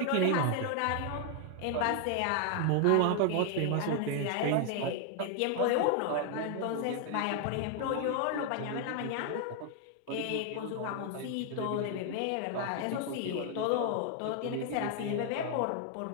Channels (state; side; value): different; both; correlation 0.00